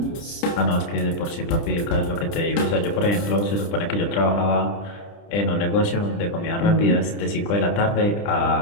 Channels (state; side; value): late; right; 30 ms